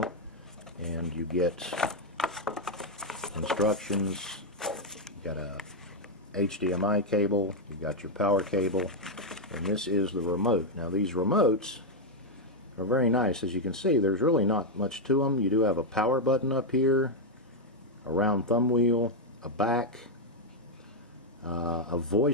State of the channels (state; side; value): normal; both; correlation 0.00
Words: And you get instructions. You've got a HDMI cable. You've got your power cable. And this is the remote. Now these remotes are very nice. As you can see, there's really not much to them. You do have a power button up here, a round thumb wheel, a back, a